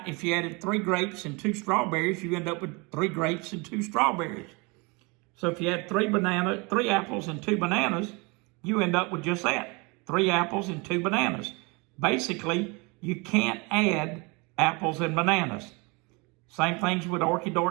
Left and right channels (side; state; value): left; quieter; 28.2 dB